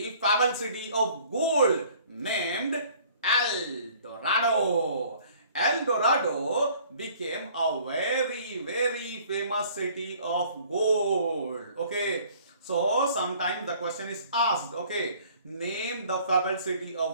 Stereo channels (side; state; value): both; inverted; correlation -0.55